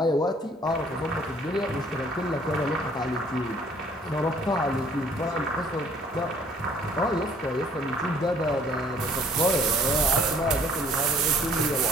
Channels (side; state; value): both; normal; correlation 0.58